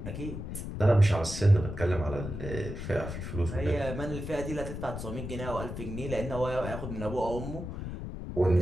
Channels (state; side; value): noise; left; rumble, 7 dB below the sound